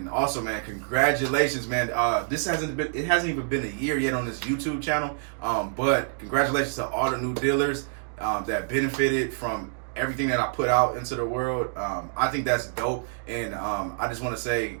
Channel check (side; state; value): left; silent; digital silence